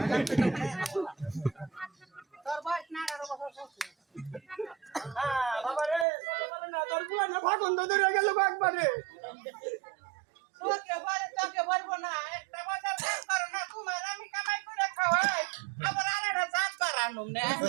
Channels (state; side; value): drops out; left; at 6.1 s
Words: তোর বয়স না 18 বছর হচ্ছে হ্যাঁ বাবা রে না তোর বুলা না ভাগন ধরে গেল একবারে তোকে বলবো না একটা বাজার কাজ করো না তোমার আমি কামাই করে খাওয়াই আবার আরেকটা জাত বাড়ানো না